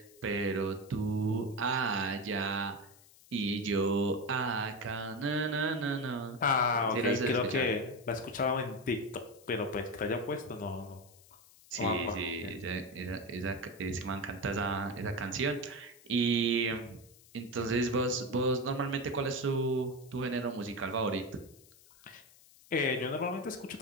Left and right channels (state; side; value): noise; left; hiss, 25 dB below the sound